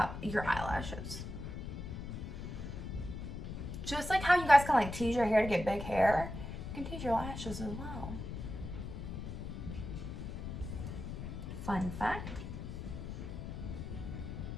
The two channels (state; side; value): noise; left; rumble, 7 dB below the sound